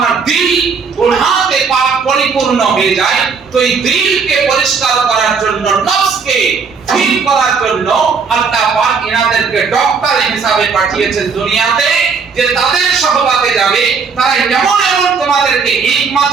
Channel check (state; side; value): quieter; left; 5.4 dB